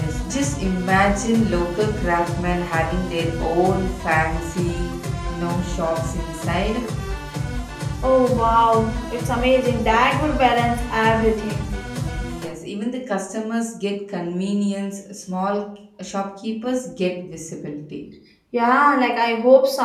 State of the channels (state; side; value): identical; both; correlation 1.00